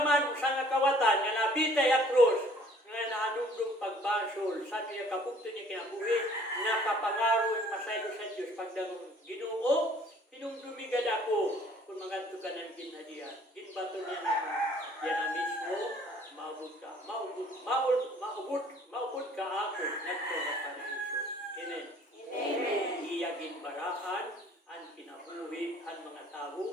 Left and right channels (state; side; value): normal; both; correlation 0.56